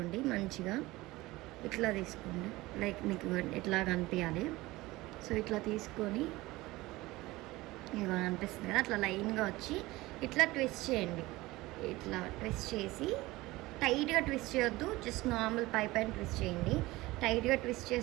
మంచిగా ఇట్లా తీసుకోండి, లైక్ మీకు ఇట్లా కనిపించాలి. సో ఇట్లా తీసుకొని ఇక అనిపిస్తుంది కదా, అట్లా లైన్గా వచ్చి ఇట్లా ట్విస్ట్ చేయండి. ఇట్లా ట్విస్ట్ చేసి టైట్గా ట్విస్ట్ చేయొద్దు, జస్ట్ నార్మల్ పై పైన ట్విస్ట్ చేయండి. టైట్గా ట్విస్ట్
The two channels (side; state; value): left; quieter; 19.6 dB